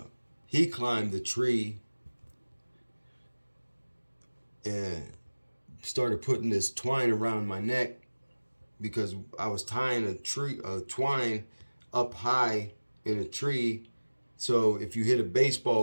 He climbed the tree and started putting this twine around my neck because I was tying a twine up high in a tree. So if you hit a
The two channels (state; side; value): inverted; both; correlation -1.00